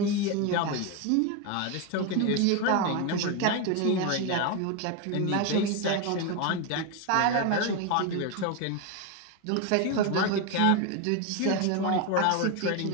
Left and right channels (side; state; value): both; different; correlation 0.02